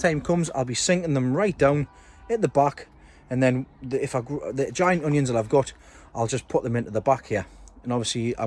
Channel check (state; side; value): identical; both; correlation 1.00